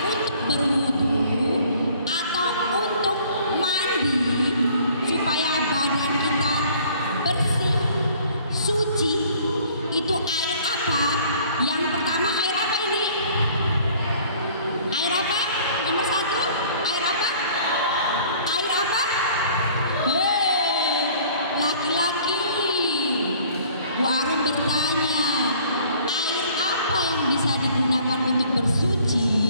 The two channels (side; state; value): both; inverted; correlation -0.54